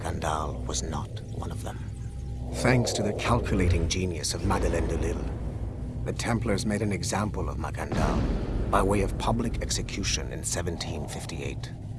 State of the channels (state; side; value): identical; both; correlation 1.00